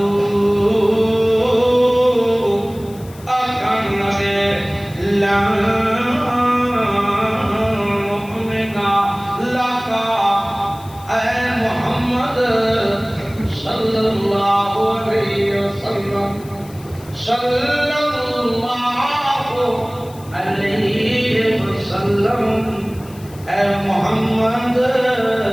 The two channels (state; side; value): noise; left; hiss, 23 dB below the sound